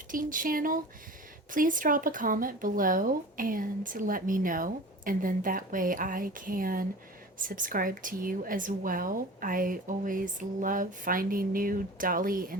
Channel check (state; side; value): normal; both; correlation 0.38